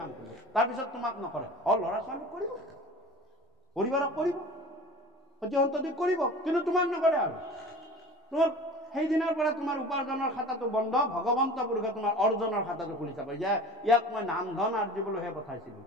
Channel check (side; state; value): both; normal; correlation 0.39